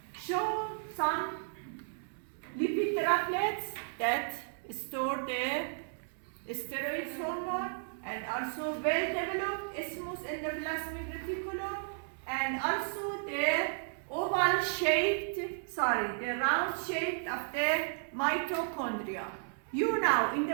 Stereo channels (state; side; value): silent; left; 55 dB below the other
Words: show some lipid droplets that store the steroid hormone, and also well-developed smooth endoplasmic reticulum, and also the oval round shaped of the mitochondria. You know, in